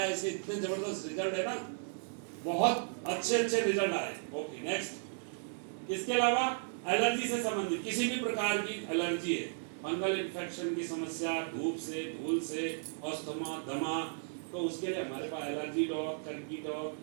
ऐसे इतने जबरदस्त रिजल्ट है ना, बहुत अच्छे रिजल्ट आए। Okay, next. इसके अलावा एलर्जी से संबंधित किसी भी प्रकार की एलर्जी है, फंगल इन्फेक्शन की समस्या, धूप से, धूल से, अस्थमा, दमा, तो उसके लिए हमारे पास allergy dog, turkey dog,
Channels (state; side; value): silent; left; digital silence